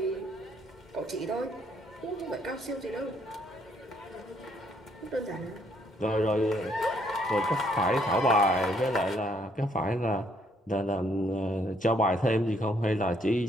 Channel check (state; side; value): normal; both; correlation 0.68